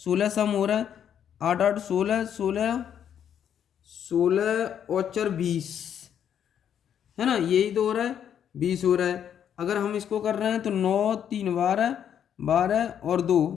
सम हो रहा है, 8 8 16, 16 16 और 4 20, है ना, यही तो हो रहा है, 20 हो रहा है। अगर हम इसको कर रहे हैं तो 9 3 12, 12 और 2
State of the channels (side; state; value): right; quieter; 9.1 dB